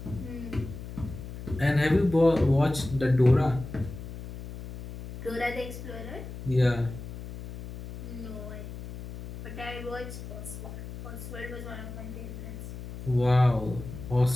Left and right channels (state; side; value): noise; left; hum, 11 dB below the sound